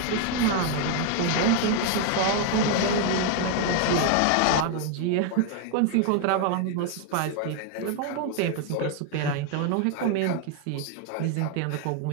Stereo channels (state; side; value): different; both; correlation 0.00